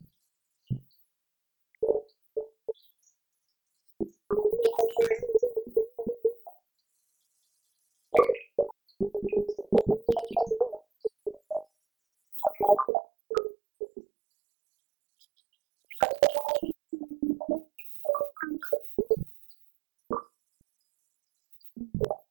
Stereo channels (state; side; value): drops out; left; at 12.9 s